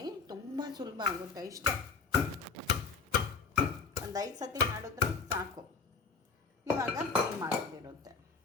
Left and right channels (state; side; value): quieter; right; 4.9 dB